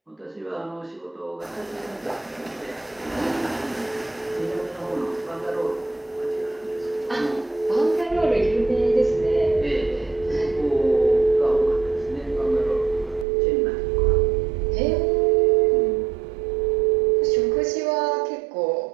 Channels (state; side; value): drops out; left; at 13.2 s